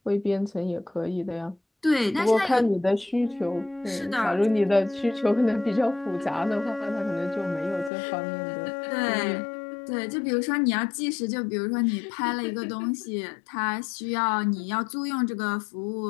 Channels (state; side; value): drops out; right; at 7.9 s